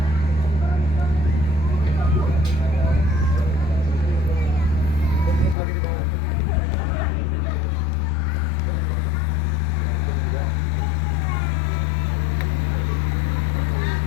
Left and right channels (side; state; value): right; drops out; at 5.6 s